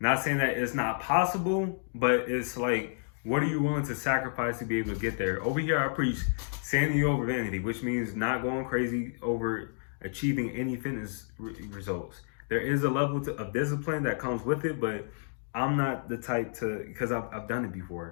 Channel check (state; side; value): silent; right; digital silence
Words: saying that it's not possible, but it's like, what are you willing to sacrifice to be able to get there? Over here, I preach sanity over vanity, which means not going crazy over achieving any fitness results. There is a level of discipline that comes with it, but I'm not the type to, because I've done it